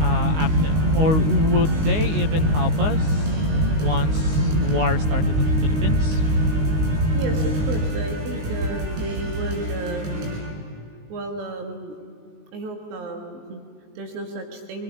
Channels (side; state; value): left; late; 19 ms